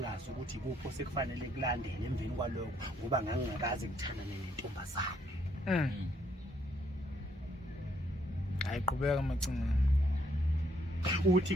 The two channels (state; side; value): normal; both; correlation 0.70